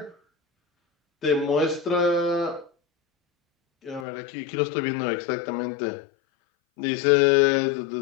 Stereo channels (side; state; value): right; drops out; at 4.0 s